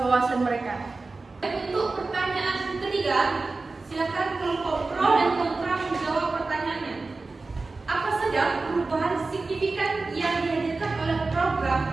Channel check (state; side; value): quieter; left; 3.7 dB